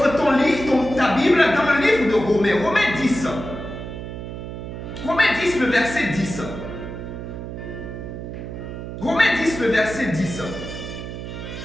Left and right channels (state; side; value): noise; right; hum, 8 dB below the sound